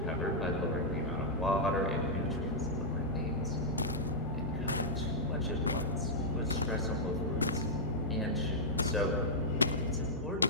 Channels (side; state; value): both; normal; correlation -0.09